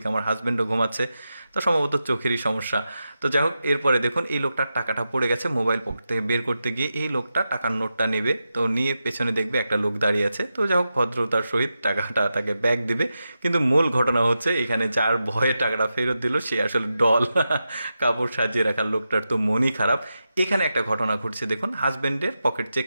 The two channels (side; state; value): both; inverted; correlation -0.90